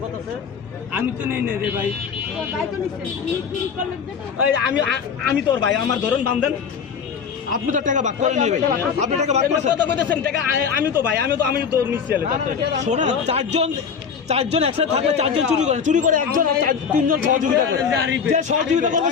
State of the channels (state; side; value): quieter; right; 6.6 dB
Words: করতেছে। আমি তো নেই রে ভাই, আমি তোর ভাই, আমার ধরুন দাম দেন। আপনি তো টাকা ভাগ করে নেবেন, আপনি টাকা ভাগ করে কত কইতেছেন টাকা? আমি তো ভাই, আমি তো নিচ্ছি। শোনা, চারজন একসাথে থাকলে চারজন চুরি করে একজন তিনজন সহযোগিতা করে, যে সহযোগিতা করবে